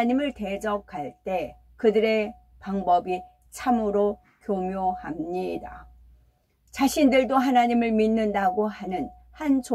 대적할 때 그들의 방법이 참으로 교묘합니다. 자신들도 하나님을 믿는다고 하는 한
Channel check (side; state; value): both; identical; correlation 1.00